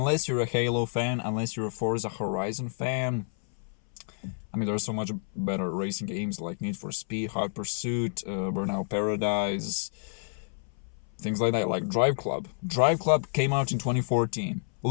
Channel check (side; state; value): right; silent; 58 dB below the other